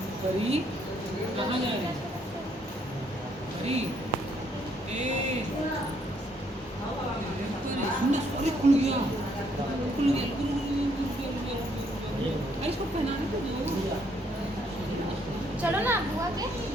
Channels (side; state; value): both; normal; correlation 0.70